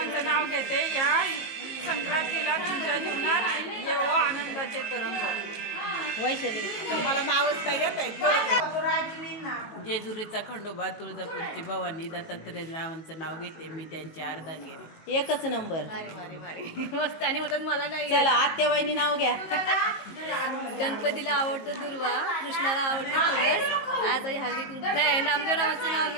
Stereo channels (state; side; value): late; right; 19 ms